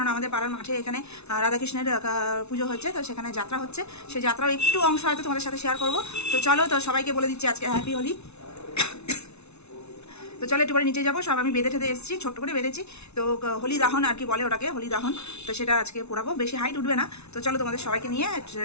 আমাদের পাড়ার মাঠে এখানে রাধাকৃষ্ণের পুজো হচ্ছে, তো সেখানে যাত্রা হচ্ছে। সেই যাত্রাও একটু অংশ হয়তো তোমাদের সাথে শেয়ার করবো। তো চলো, তো সবাইকে বলে দিচ্ছি আজকে হ্যাপি হোলি। তো চলো একটু পরে নিচে যাবো, সব আমি বেঁধে ঠেতে এসেছি, ছোট্ট করে বেঁধেছি। তো হোলি দাহন আর কি বলে ওটাকে, হোলি দাহন। তো সেটা আজকে পোড়াবো, বেশি হাইট উঠবে না। তো চলো, তোমাদের সবাইকে নিয়ে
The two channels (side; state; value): right; late; 0.81 ms